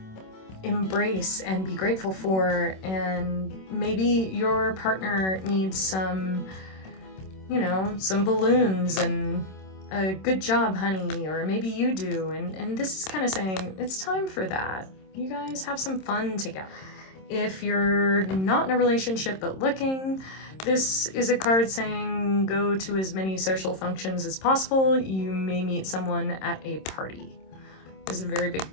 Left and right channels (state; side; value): late; right; 26 ms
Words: embrace and be grateful for. And maybe your partner needs some, you know, some balloons and a good job, honey, or maybe you do. And this is kind of saying it's time for that. You guys have some fun together. If you're not in a relationship but looking, this is a card saying go to as many social functions as possible. You may meet someone at a party. This is a very big